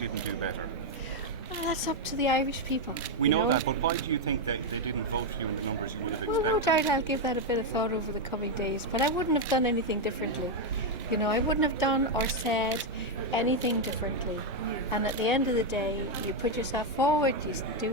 do better? Well, that's up to the Irish people. We know that, but why do you think that they didn't vote for you in the numbers you would have expected? Well, no doubt I'll give that a bit of thought over the coming days, but I wouldn't have done anything differently. I wouldn't have done or said anything differently. And at the end of the day, you put yourself forward, you do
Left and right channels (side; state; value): both; normal; correlation 0.02